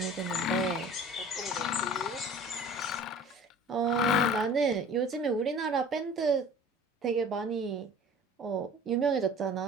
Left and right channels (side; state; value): both; normal; correlation 0.44